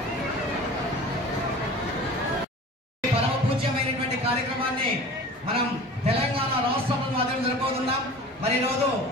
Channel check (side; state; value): both; normal; correlation 0.40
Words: కార్యక్రమాన్ని మనం తెలంగాణ రాష్ట్ర మాధ్యమం జరుపుతున్నాం. మరి రోజు